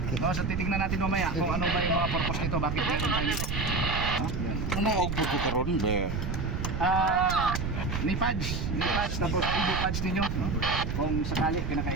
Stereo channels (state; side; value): noise; right; rumble, 2 dB below the sound